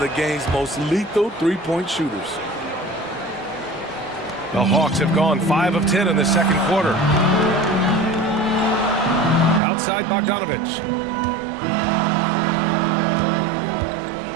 the game's most lethal three-point shooters. The Hawks have gone 5 of 10 in the second quarter. Outside Bogdanovich.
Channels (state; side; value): drops out; left; at 9.6 s